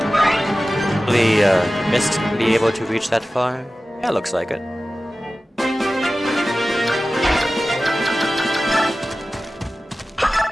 Hopefully, Mist can be able to reach that far. Yeah, looks like it.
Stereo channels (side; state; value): both; normal; correlation 0.96